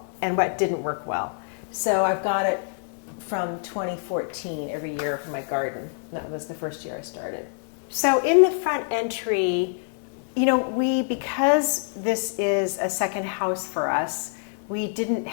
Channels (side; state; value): right; silent; digital silence